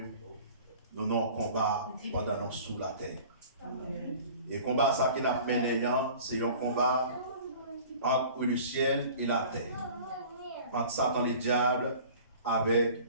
nous avons un combat pendant nous sous la terre. Amen. Et le combat ça qui n'a mené, c'est un combat entre le ciel et la terre. Entre Satan et le diable avec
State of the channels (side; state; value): both; inverted; correlation -0.45